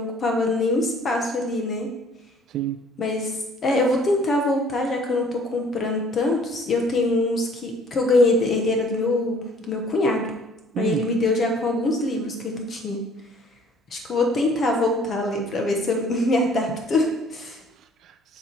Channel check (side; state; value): both; normal; correlation 0.56